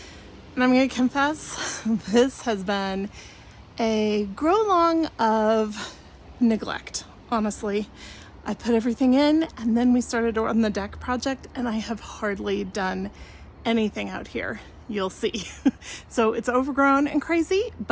And I'm gonna confess, this has been a grow along of neglect, honestly. I put everything in and then we started on the deck project and I have hardly done anything out here. You'll see. So it's overgrown and crazy,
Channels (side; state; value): both; identical; correlation 1.00